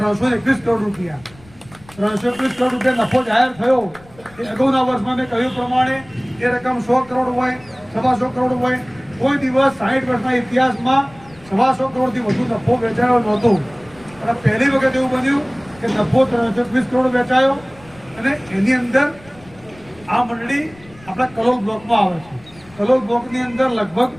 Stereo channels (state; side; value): noise; left; rumble, 24 dB below the sound